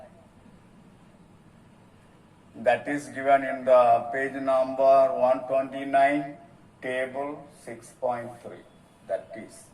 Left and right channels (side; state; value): both; identical; correlation 1.00